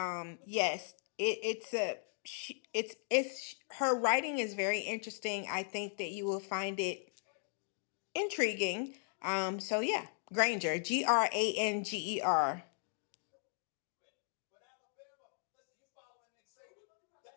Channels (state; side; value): silent; right; digital silence